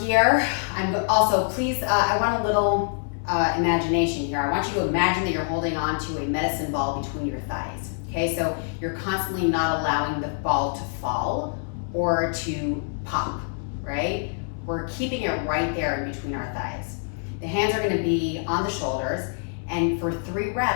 I'm also, please, I want a little imagination here. I want you to imagine that you're holding on to a medicine ball between your thighs, okay? So you're constantly not allowing the ball to fall or to pop, right? We're keeping it right there in between our thighs. The hands are gonna be on the shoulders, and for 3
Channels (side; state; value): right; silent; 61 dB below the other